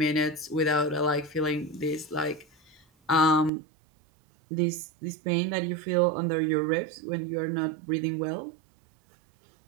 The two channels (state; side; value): drops out; left; at 3.5 s